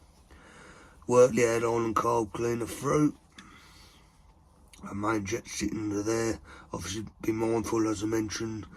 Work the airline and carb cleaner through. Our main jet sitting under there. Obviously be mindful, as I mentioned,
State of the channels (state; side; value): identical; both; correlation 1.00